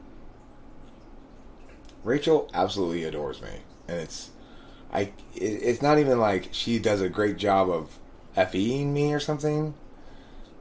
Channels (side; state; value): both; identical; correlation 1.00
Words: Rachel absolutely adores me, and it's not even like she does a great job of FEing me or something.